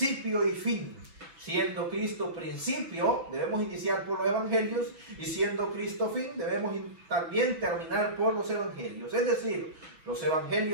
y fin. Siendo Cristo principio, debemos iniciar por los Evangelios, y siendo Cristo fin, debemos también terminar por los Evangelios. Es decir, los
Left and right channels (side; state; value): left; late; 5.9 ms